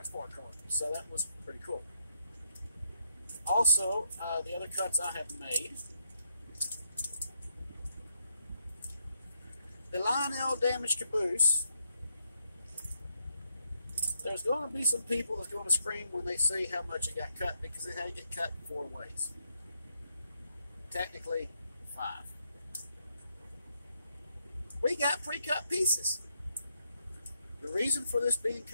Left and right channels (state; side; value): inverted; both; correlation -0.79